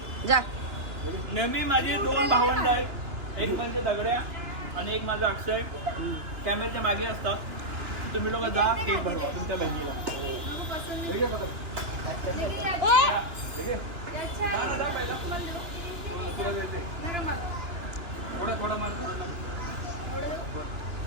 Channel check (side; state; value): left; late; 2.9 ms